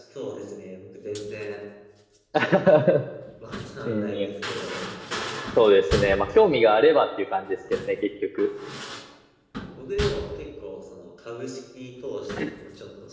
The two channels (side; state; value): both; identical; correlation 1.00